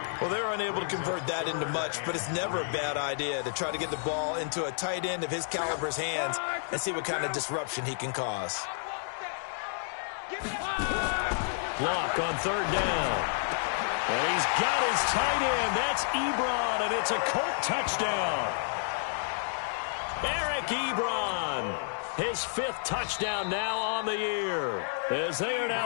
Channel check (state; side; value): silent; right; digital silence